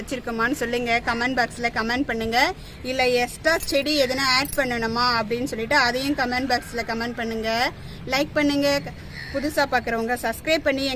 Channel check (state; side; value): identical; both; correlation 1.00